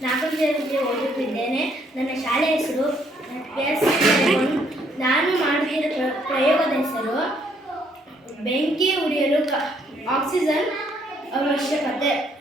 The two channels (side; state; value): both; normal; correlation 0.68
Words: 4ನೇ ತರಗತಿ ಓದುತ್ತಿದ್ದೇನೆ. ನನ್ನ ಶಾಲೆ ಹೆಸರು ಎಸ್. ನಾನು ಮಾಡುತ್ತಿರುವ ಪ್ರಯೋಗದ ಹೆಸರು ಬೆಂಕಿ ಉರಿಯಲು ಆಕ್ಸಿಜನ್ ಅವಶ್ಯಕತೆ.